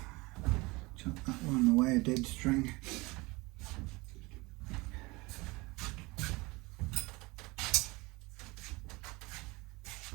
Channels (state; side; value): quieter; left; 23.8 dB